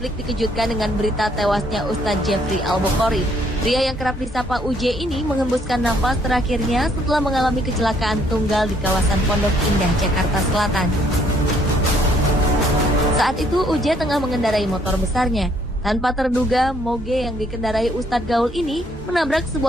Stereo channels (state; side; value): normal; both; correlation 0.66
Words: dikejutkan dengan berita tewasnya Ustadz Jeffrey Al-Bukhari. Pria yang kerap disapa UJ ini menghembuskan nafas terakhirnya setelah mengalami kecelakaan tunggal di kawasan Pondok Indah, Jakarta Selatan. Saat itu UJ tengah mengendarai motor besarnya. Tanpa terduga, moge yang dikendarai Ustadz Gaul ini menabrak